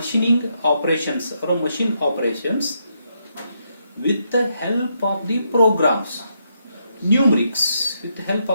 operations or machine operations with the help of the programs, numerics, with the help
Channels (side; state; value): both; inverted; correlation -0.79